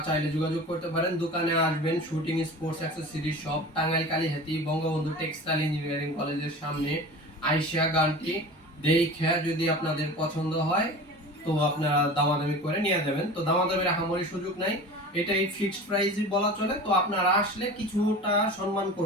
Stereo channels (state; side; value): normal; both; correlation 0.36